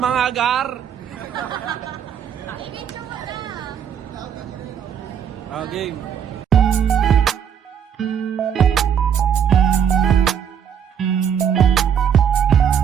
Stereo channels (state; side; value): quieter; left; 8.2 dB